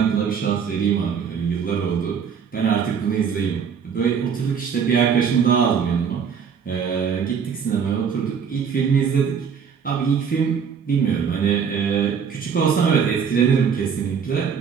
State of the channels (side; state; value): left; quieter; 6.9 dB